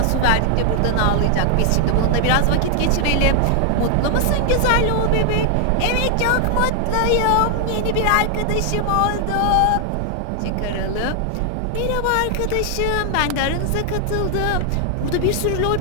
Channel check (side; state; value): both; different; correlation 0.00